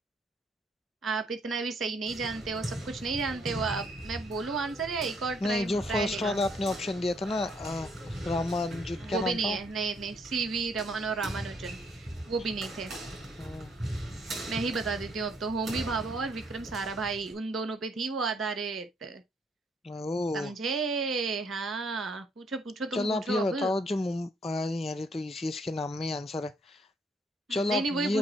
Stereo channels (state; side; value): normal; both; correlation 0.68